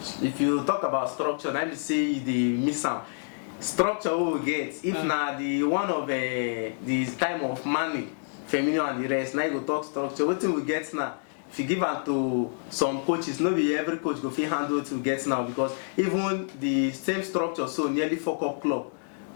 if you talk about structure, na be say the miss am. Structure we will get if na the one of the time of money, Firmino and the rest. Now you go talk structure. Wetin we get now? If you give am to some coaches, not be every coach go fit handle it to get now, because even the same structure so nearly fuck up club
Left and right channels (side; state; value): right; silent; digital silence